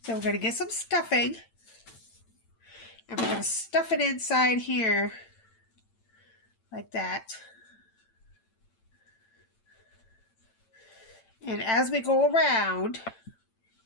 So we're going to get some stuffing. And we're going to stuff it inside here. Like that. And as we go around,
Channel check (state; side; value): late; right; 8.9 ms